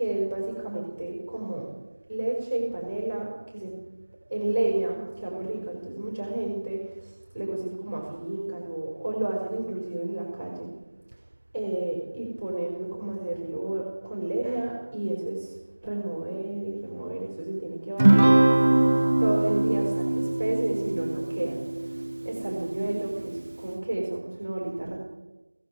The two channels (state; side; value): inverted; both; correlation -1.00